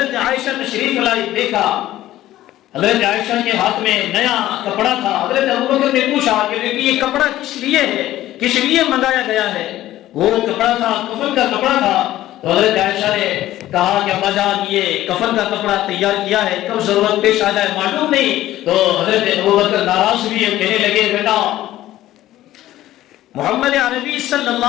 عائشہ تشریف لائی، دیکھا حضرت عائشہ کے ہاتھ میں نیا کپڑا تھا، حضرت ابو بکر نے پوچھا کہ یہ کپڑا کس لیے ہے، کس لیے منگایا گیا ہے؟ وہ کپڑا تھا کفن کا کپڑا تھا، تو حضرت عائشہ نے کہا کہ ابا جان یہ کفن کا کپڑا تیار کیا ہے، کب ضرورت پیش آ جائے معلوم نہیں۔ تو حضرت ابو بکر ناراض ہوئے، کہنے لگے بیٹا محمد عربی صلی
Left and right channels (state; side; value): quieter; right; 14.4 dB